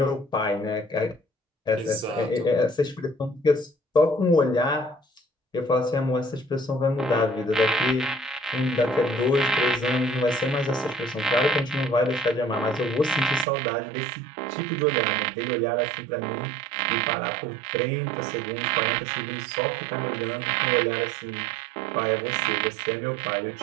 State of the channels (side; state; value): left; drops out; at 13.5 s